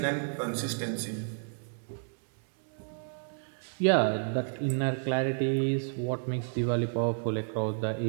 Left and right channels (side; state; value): left; silent; 57 dB below the other